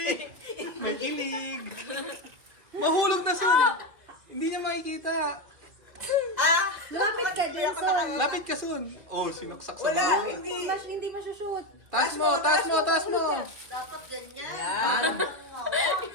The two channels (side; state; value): left; late; 2.4 ms